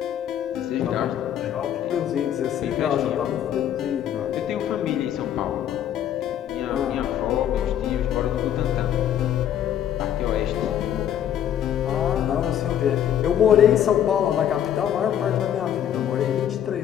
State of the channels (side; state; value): right; quieter; 10.1 dB